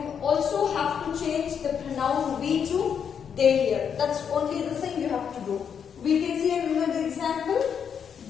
also have to change the pronoun we to they here. That's only the thing you have to do. We can see another example.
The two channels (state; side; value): quieter; right; 7.5 dB